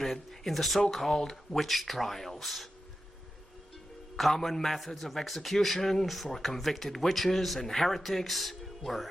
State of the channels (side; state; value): both; normal; correlation 0.91